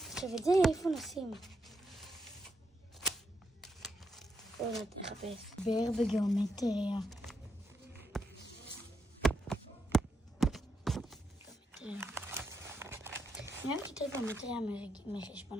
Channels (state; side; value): normal; both; correlation 0.82